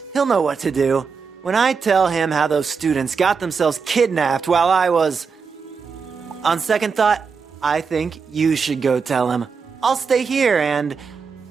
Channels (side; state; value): left; quieter; 5.5 dB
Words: He'll know what to do. When I tell him how those students got themselves kidnapped while I was... On second thought, I think you should go tell him. I'll stay here and